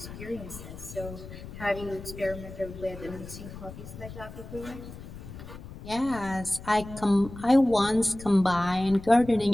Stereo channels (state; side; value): noise; left; rumble, 13 dB below the sound